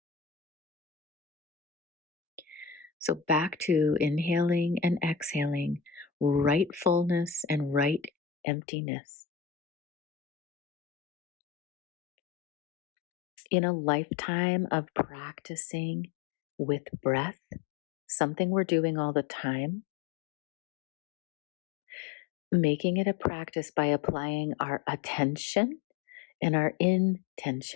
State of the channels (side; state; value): right; drops out; at 8.1 s